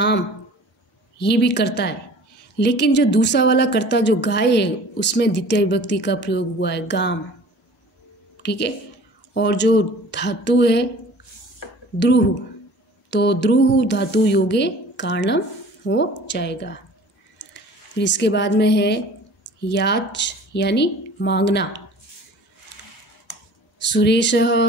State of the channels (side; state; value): both; normal; correlation 0.46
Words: ये भी करता है, लेकिन जो दूसरा वाला कर्ता जो गाय है उसमें द्वितीय विभक्ति का प्रयोग हुआ है, गाम। ठीक है। और जो धातु है द्रुह, तो द्रुह धातु योगे कारणम हो जाएगा। फिर इसके बाद में है याच, यानी मांगना। सुरेशः